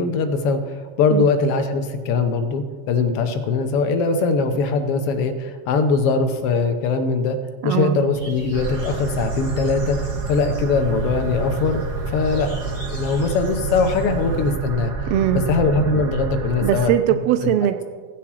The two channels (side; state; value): right; late; 7.2 ms